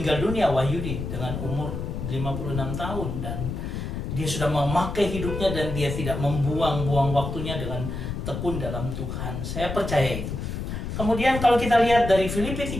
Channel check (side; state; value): left; noise; rumble, 5 dB below the sound